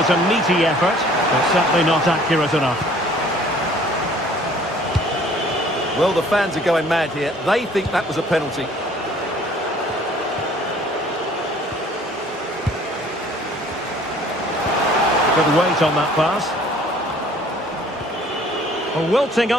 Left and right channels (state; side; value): normal; both; correlation 0.54